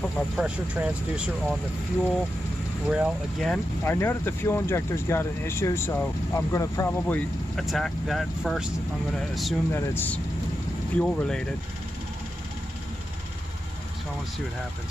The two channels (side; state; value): both; normal; correlation 0.88